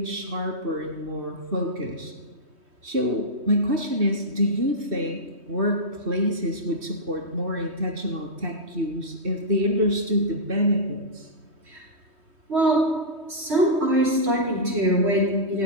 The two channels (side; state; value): left; late; 3.2 ms